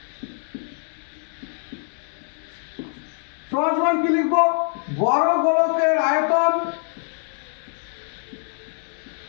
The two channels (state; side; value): silent; right; 59 dB below the other